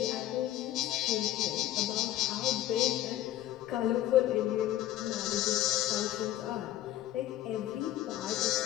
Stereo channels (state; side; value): quieter; right; 13.5 dB